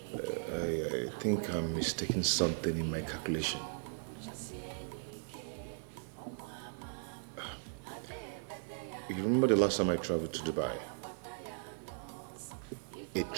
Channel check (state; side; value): silent; left; 53 dB below the other